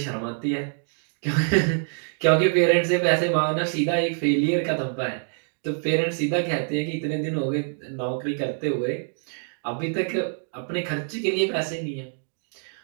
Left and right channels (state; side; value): silent; left; 61 dB below the other